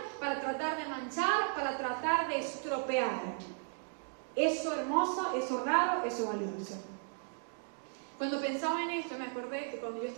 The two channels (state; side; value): silent; left; 54 dB below the other